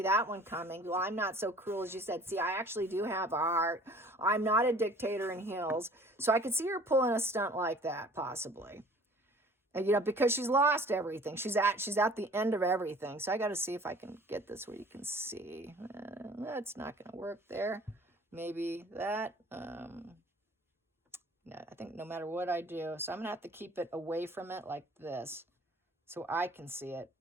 that one coming. Well, I'm not so cruel as you said. See, I actually do have a heart. I'm not a dictator in heels. So I could see her pulling a stunt like that, possibly. And, because she's lost everything. She's at the end of everything. So I got to see if I can get this where you can see. That's not going to work there. Maybe that. No, I think no matter what I do. So I'm going to have to keep it away from it like this so I can see it.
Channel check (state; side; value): normal; both; correlation 0.50